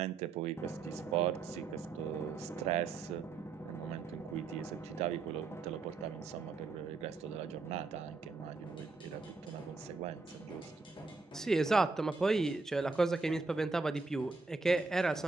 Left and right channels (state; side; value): quieter; left; 4.1 dB